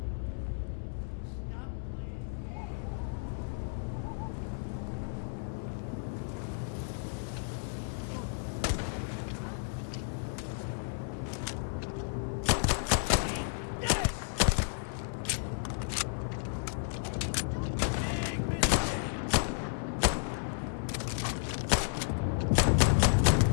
Stop playing games. Found you.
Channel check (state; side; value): silent; right; 56 dB below the other